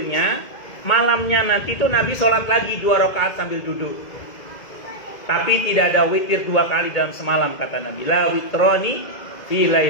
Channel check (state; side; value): late; right; 2.0 ms